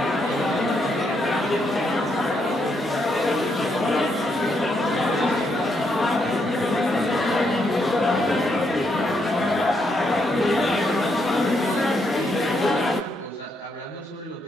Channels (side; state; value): both; normal; correlation 0.77